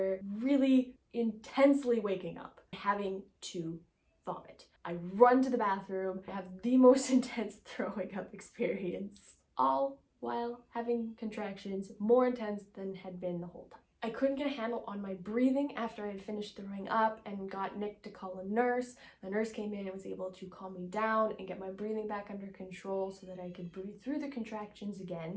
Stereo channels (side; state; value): both; identical; correlation 1.00